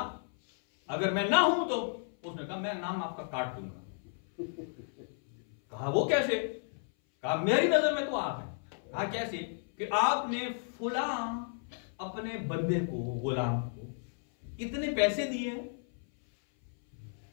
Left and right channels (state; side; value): silent; right; 56 dB below the other